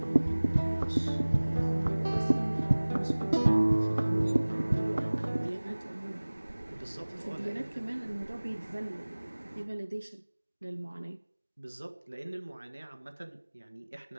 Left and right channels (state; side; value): inverted; both; correlation -1.00